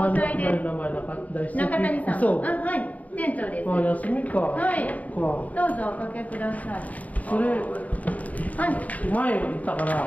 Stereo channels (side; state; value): right; late; 0.072 ms